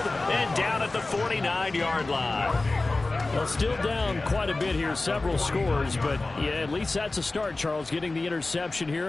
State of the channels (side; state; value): right; quieter; 3.2 dB